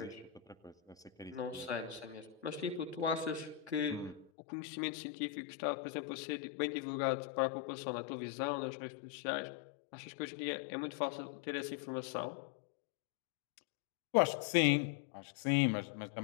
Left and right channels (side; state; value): right; drops out; at 4.3 s